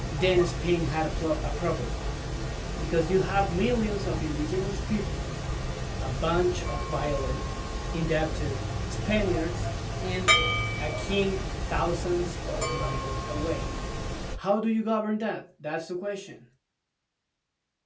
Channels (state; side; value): identical; both; correlation 1.00